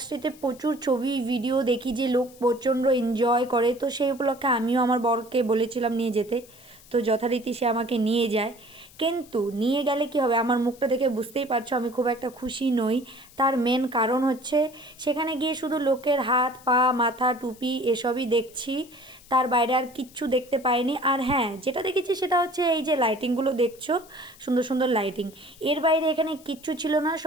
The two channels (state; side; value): noise; left; hiss, 24 dB below the sound